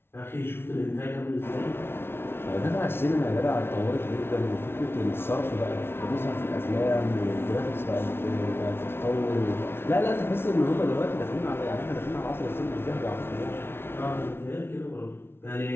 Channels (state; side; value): late; right; 0.12 ms